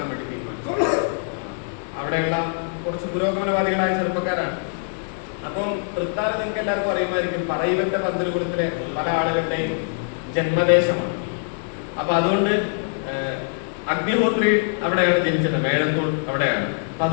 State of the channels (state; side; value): silent; right; digital silence